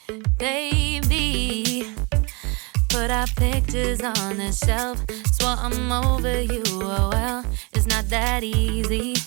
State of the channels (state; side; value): quieter; left; 29.4 dB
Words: baby. Put our pictures on the shelf. Swore I'm over you, oh well, it's not that easy.